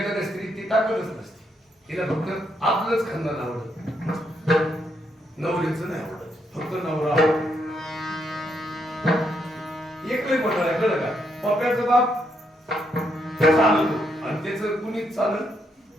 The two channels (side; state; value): both; normal; correlation 0.77